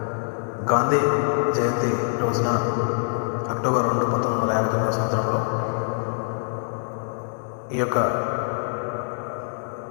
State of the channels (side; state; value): right; silent; digital silence